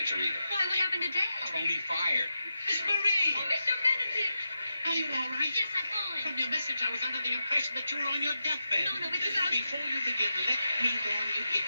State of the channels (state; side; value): inverted; both; correlation -0.88